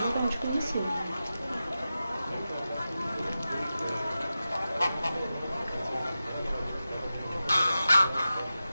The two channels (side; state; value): both; inverted; correlation -0.93